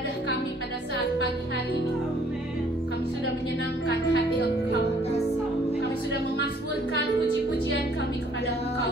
kami pada saat pagi hari ini. Kami sudah menyenangkan hati Engkau. Kami sudah memasmurkan puji-pujian kami kepada Engkau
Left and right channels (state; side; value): normal; both; correlation 0.61